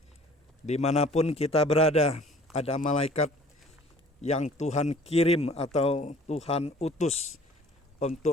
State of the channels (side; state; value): both; normal; correlation 0.50